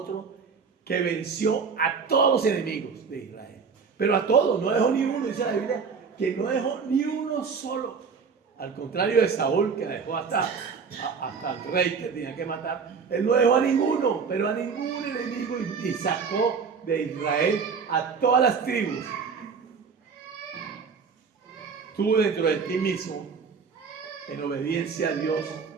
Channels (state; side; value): quieter; left; 5.7 dB